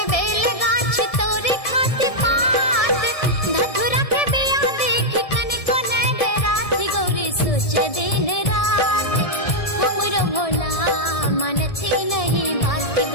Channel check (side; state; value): right; late; 1.7 ms